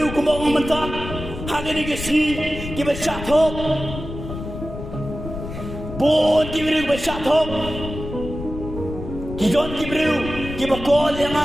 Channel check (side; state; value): left; noise; rumble, 9 dB below the sound